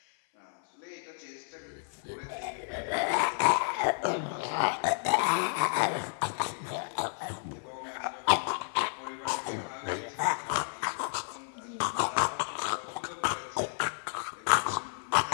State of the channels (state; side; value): silent; right; 57 dB below the other